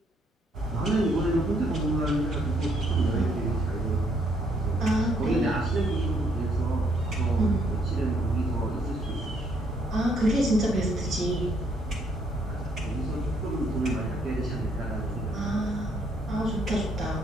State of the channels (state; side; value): normal; both; correlation 0.69